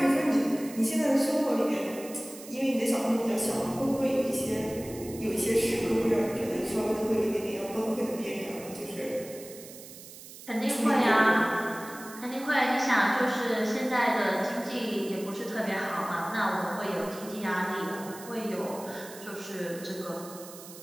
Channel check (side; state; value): right; noise; hiss, 16 dB below the sound